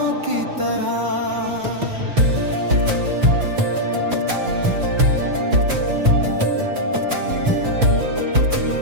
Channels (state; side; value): late; left; 5.4 ms